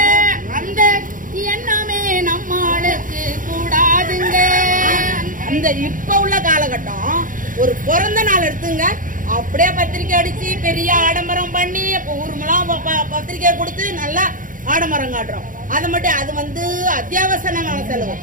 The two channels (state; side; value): late; left; 0.39 ms